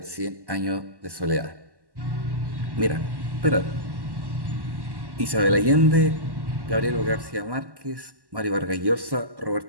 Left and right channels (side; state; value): left; late; 1.1 ms